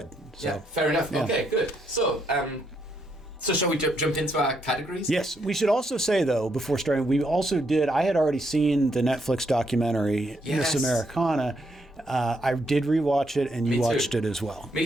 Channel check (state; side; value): normal; both; correlation 0.76